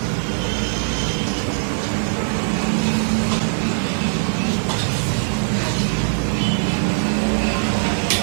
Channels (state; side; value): silent; left; digital silence